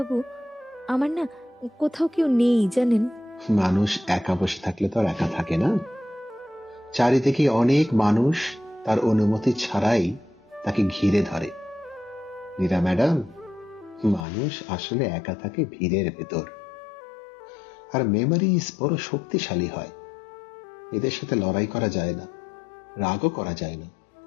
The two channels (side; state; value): right; drops out; at 14.2 s